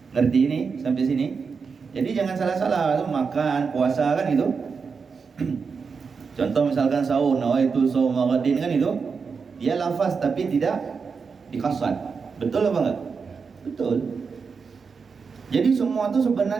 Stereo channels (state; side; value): quieter; left; 5.4 dB